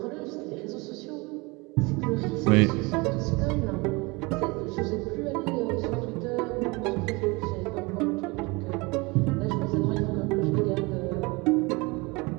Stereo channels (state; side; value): quieter; left; 25.9 dB